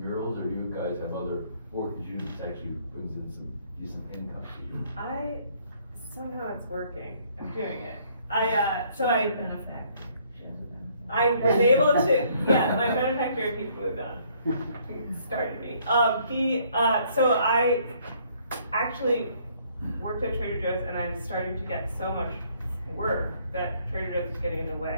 murals, or do you guys have other work that you just actually brings in some decent income to you? Somehow it's working. I'm doing it. I was able to, my benefactor, he's moved on. He started me. So I actually worked at Trader Joe's, and I'm starting to get so much work that Trader Joe's was getting in the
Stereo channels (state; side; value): inverted; both; correlation -0.64